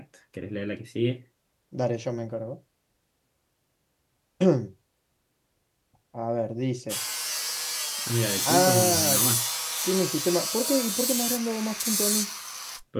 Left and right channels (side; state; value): both; identical; correlation 1.00